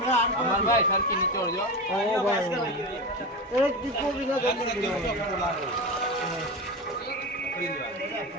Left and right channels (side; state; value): both; normal; correlation 0.22